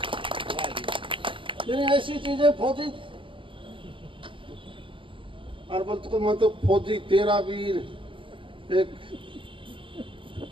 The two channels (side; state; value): left; late; 0.25 ms